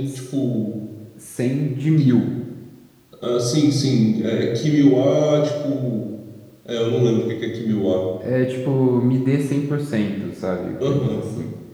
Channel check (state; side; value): identical; both; correlation 1.00